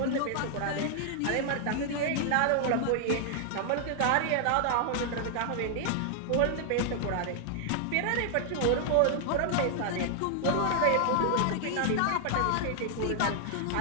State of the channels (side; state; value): both; different; correlation 0.00